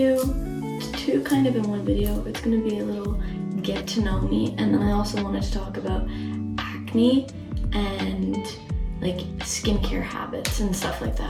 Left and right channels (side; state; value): both; identical; correlation 1.00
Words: two kind of in one video. It's gonna be a little get to know me, and then I also wanted to talk about acne and like skincare habits and stuff like